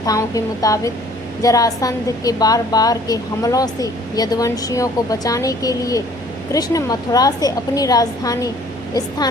के मुताबिक जरासंध के बार के हमलों से यदुवंशियों को बचाने के लिए कृष्ण मथुरा से अपनी राजधानी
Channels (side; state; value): both; normal; correlation 0.55